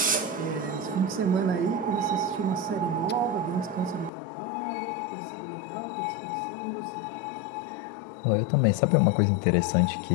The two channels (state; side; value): drops out; right; at 4.1 s